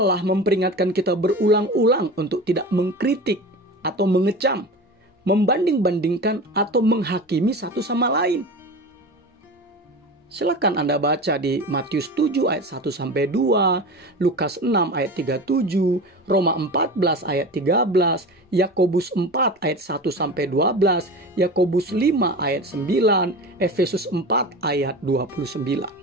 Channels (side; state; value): both; normal; correlation 0.31